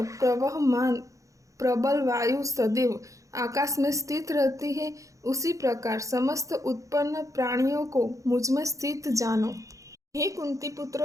प्रवहमान प्रबल वायु सदैव आकाश में स्थित रहती है, उसी प्रकार समस्त उत्पन्न प्राणियों को मुझ में स्थित जानो। हे कुंती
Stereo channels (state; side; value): late; left; 0.16 ms